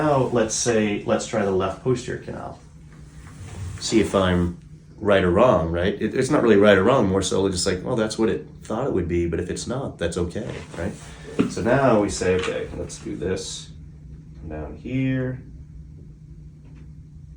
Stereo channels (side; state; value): both; identical; correlation 1.00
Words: let's try the left posterior canal. See if I'm right or wrong, right? It's not really right or wrong, more so just like, well, that's what it thought it would be, but if it's not, that's okay, right? So now we say, okay, let's do this. Come down here.